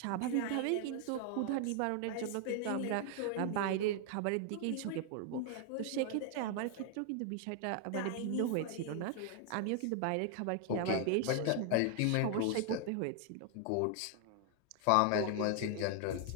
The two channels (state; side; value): different; both; correlation 0.00